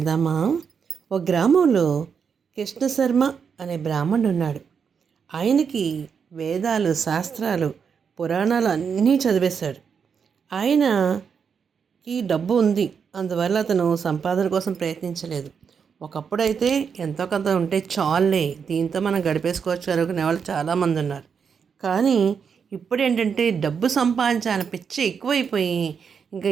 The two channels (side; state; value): left; quieter; 6.5 dB